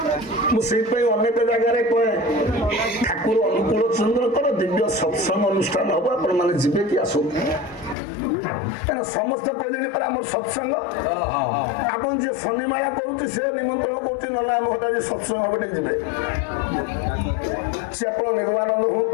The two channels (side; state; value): right; drops out; at 8.0 s